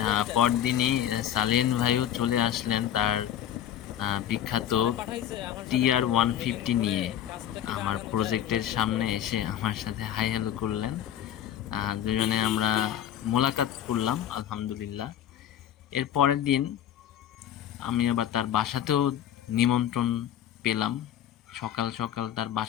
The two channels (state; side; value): quieter; right; 10.7 dB